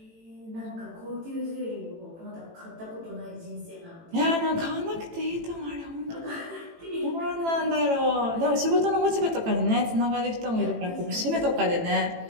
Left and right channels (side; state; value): left; late; 18 ms